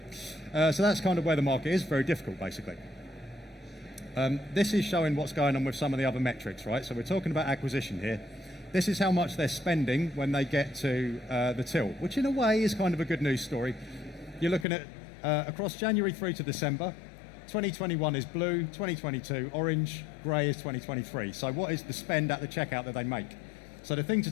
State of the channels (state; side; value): drops out; right; at 14.7 s